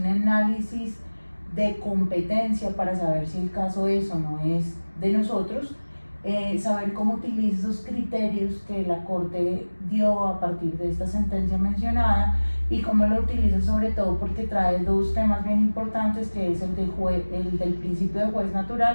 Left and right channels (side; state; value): both; inverted; correlation -1.00